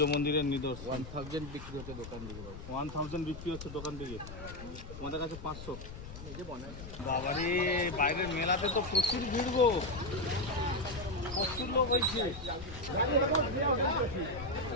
মন্দিরের নিদর্শন। 1000 বিক্রি হতে দোকান দিকে 1000 বিক্রি হচ্ছে দোকান থেকে, তোমাদের কাছে 500। বাবারে, বাইরের মেলাতে তো প্রচুর ভিড় গো, প্রচুর লোক হয়েছে।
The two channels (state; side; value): noise; left; rumble, 12 dB below the sound